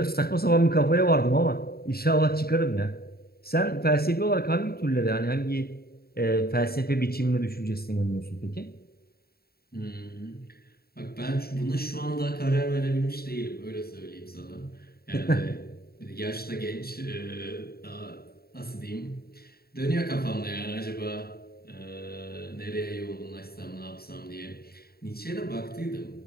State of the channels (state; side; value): late; right; 0.45 ms